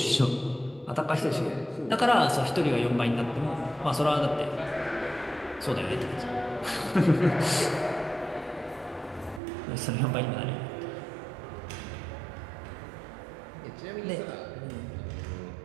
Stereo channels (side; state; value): left; drops out; at 9.4 s